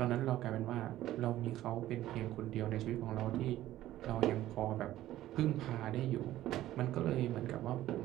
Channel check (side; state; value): left; quieter; 14.2 dB